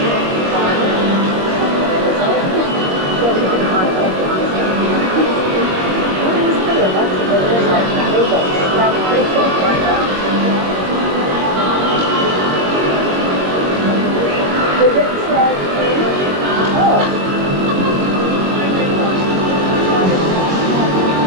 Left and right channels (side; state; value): left; late; 21 ms